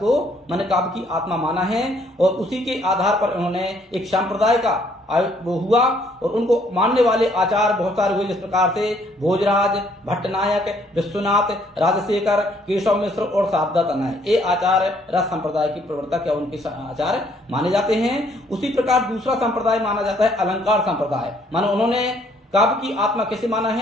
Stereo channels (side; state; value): both; normal; correlation 0.65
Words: माने काव्य की आत्मा माना है और उसी के आधार पर उन्होंने एक संप्रदाय का वो हुआ और उनको मानने वाले आचार बहुत सारे हुए, जिस प्रकार से भोजराज, भट्टनायक, विश्वनाथ, राजशेखर, केशव मिश्र और शारदा तनय, ये आचार्य रस संप्रदाय के प्रवर्तक या उनके आचार्य माने जाते हैं। उसी प्रकार दूसरा संप्रदाय माना जाता है अलंकार संप्रदाय। मानो उन्होंने काव्य की आत्मा कैसे माना